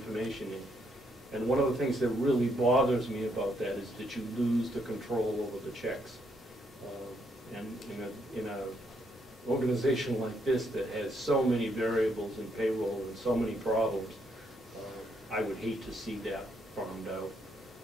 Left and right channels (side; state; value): both; normal; correlation 0.74